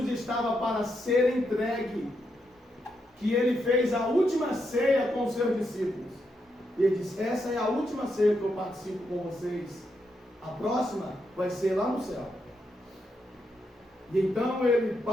estava para ser entregue, que ele fez a última ceia com os seus discípulos. E ele disse, essa é a última ceia que eu participo com vocês. A próxima vai ser lá no céu. E então ele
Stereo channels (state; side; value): normal; both; correlation 0.81